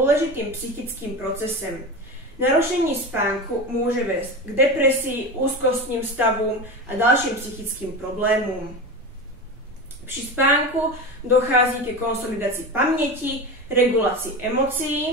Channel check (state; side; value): noise; right; rumble, 24 dB below the sound